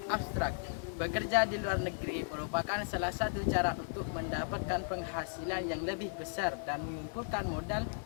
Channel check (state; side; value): silent; right; 54 dB below the other